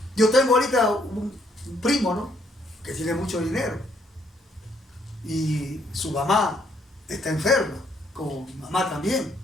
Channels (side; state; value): both; normal; correlation 0.69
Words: Yo tengo ahorita un primo, ¿no?, que tiene mucho dinero y su mamá está enferma, como mi mamá también,